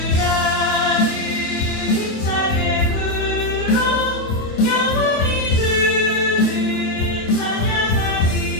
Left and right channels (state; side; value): late; right; 27 ms